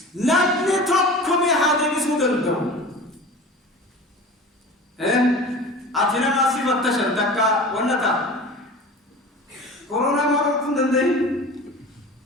لابني توقمي هادمي سودندو أتنا ما سيبت تشر دكا ونتا كورونا ما أكون دندي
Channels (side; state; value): both; normal; correlation 0.37